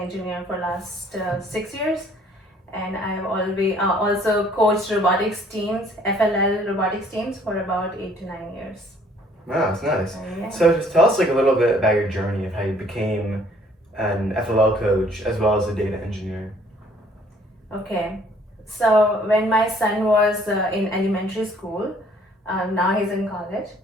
for last 6 years, and I have always also coached robotics teams, FLL robotics teams for about 8 to 9 years. Wow, that's nice. Yeah. So, just tell us a little bit about your journey of how you became an FLL coach as well as a data engineer. Okay. So when my son was in elementary school, now he's in college.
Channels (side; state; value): both; normal; correlation 0.59